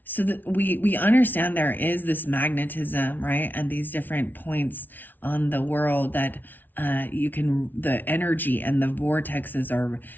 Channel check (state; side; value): late; right; 0.087 ms